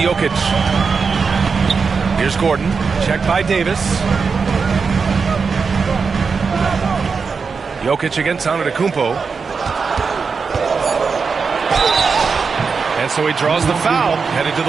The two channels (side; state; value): left; quieter; 5.2 dB